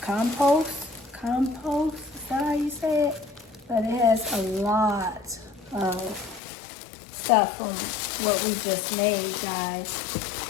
compost, is that how you say it? But it has a lot of stuff from what we just made, guys.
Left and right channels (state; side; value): drops out; right; at 6.4 s